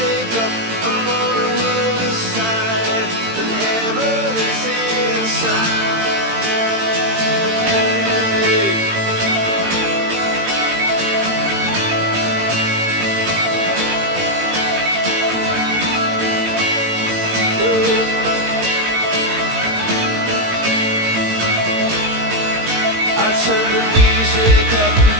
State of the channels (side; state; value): left; late; 18 ms